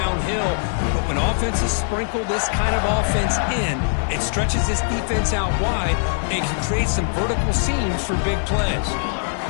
But when offenses sprinkle this kind of offense in, it stretches this defense out wide and can create some vertical seams for big plays.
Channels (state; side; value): silent; right; 65 dB below the other